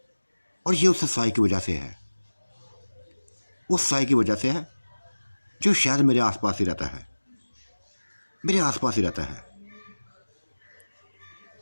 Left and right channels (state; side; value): inverted; both; correlation -1.00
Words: और ये उस साई की वजह से है, उस साई की वजह से है जो शायद मेरे आसपास ही रहता है, मेरे आसपास ही रहता है।